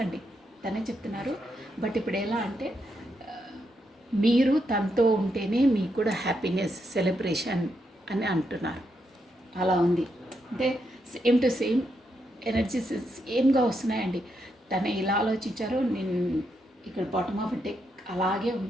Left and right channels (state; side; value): normal; both; correlation 0.81